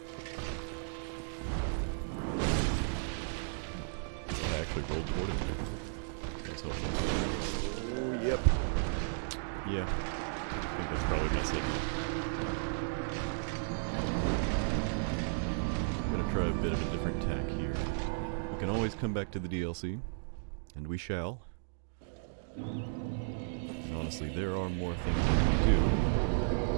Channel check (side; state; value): left; silent; digital silence